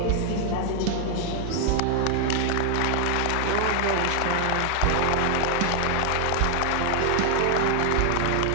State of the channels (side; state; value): both; different; correlation 0.00